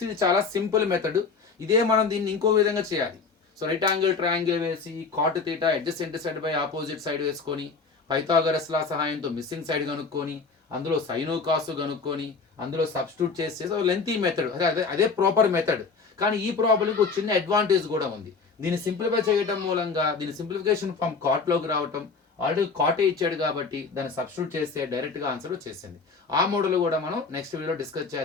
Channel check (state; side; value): quieter; right; 4.7 dB